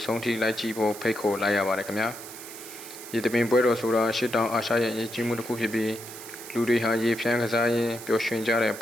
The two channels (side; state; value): right; noise; hiss, 13 dB below the sound